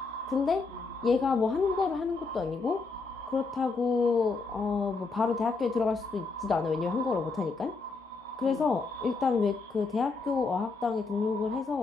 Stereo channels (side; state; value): right; quieter; 4.1 dB